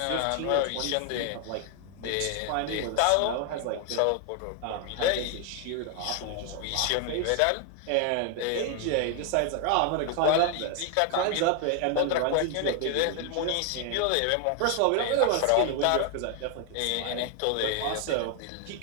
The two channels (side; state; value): both; different; correlation 0.00